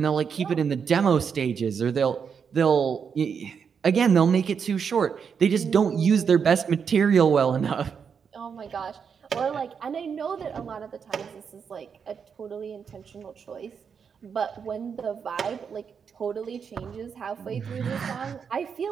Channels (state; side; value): quieter; left; 6.6 dB